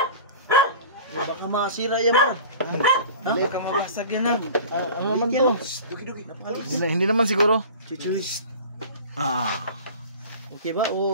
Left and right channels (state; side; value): inverted; both; correlation -0.40